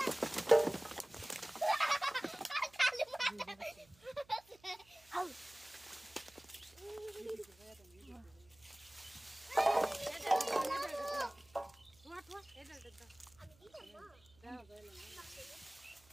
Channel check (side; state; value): right; noise; hum, 29 dB below the sound